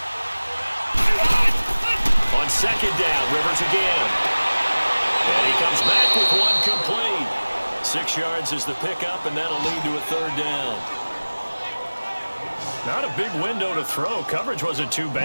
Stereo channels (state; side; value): inverted; both; correlation -1.00